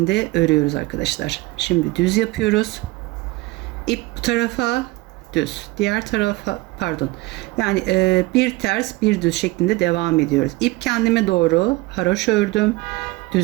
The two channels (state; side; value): quieter; left; 21.1 dB